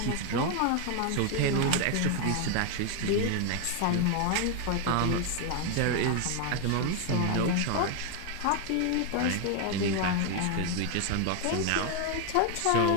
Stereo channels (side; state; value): both; different; correlation 0.01